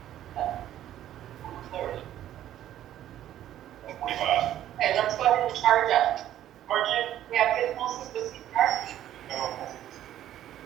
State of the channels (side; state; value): left; quieter; 12.1 dB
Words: Clarity. 25. Okay, let's go ahead and charge up. Margin. We have good pulses with CPR.